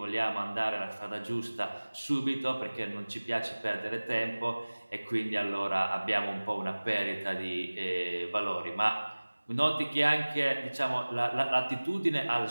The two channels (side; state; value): both; inverted; correlation -1.00